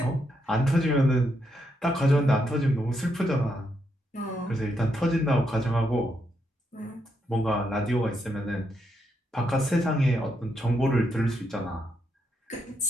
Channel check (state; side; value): normal; both; correlation 0.79